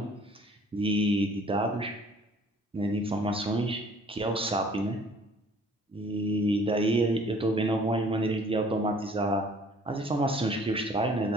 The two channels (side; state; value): both; normal; correlation 0.55